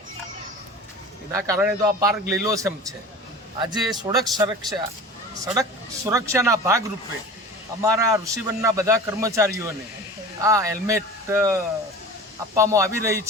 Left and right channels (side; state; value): both; normal; correlation 0.37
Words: એના કારણે તો આ પાર્ક લીલોછમ છે. આજે સડક સુરક્ષાના ભાગરૂપે અમારા ઋષિવનના બધા કર્મચારીઓને આ હેલ્મેટ આપવામાં આવી રહી